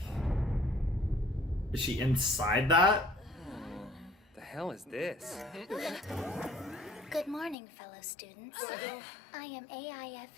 Is she inside that? The hell is this? Good morning, fellow students. I am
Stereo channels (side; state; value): right; drops out; at 7.6 s